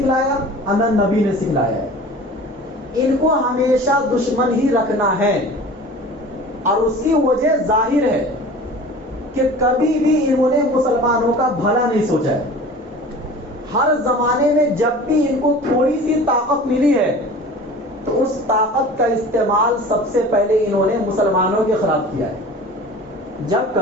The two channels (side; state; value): both; normal; correlation 0.40